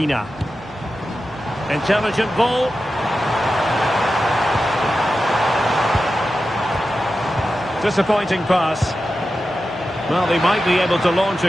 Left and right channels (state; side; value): normal; both; correlation 0.92